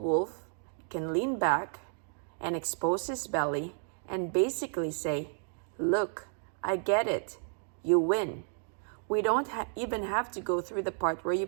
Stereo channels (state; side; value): silent; left; 56 dB below the other